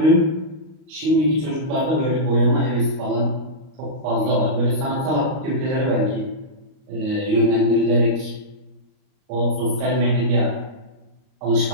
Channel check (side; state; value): left; late; 38 ms